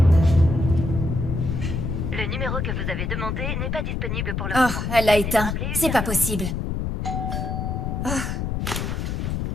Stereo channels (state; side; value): noise; left; rumble, 2 dB below the sound